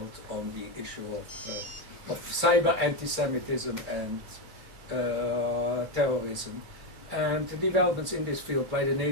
on the issue of cyber anti-Semitism and terrorism, and the developments in this field by the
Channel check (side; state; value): left; late; 2.3 ms